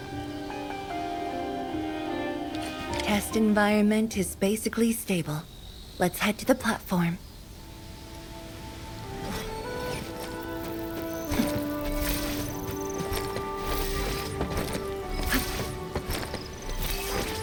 Test environment is basically stable. Let's head to the platform.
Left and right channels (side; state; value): both; identical; correlation 1.00